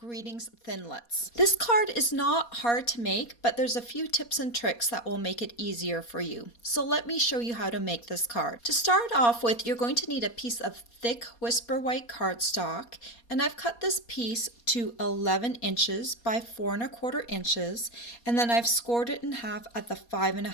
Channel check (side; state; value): right; late; 4.2 ms